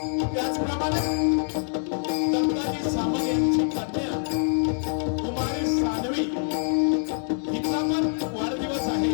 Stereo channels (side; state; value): right; silent; digital silence